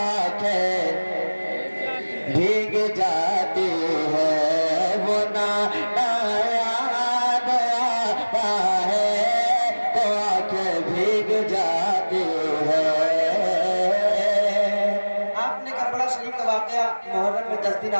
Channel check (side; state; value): both; inverted; correlation -1.00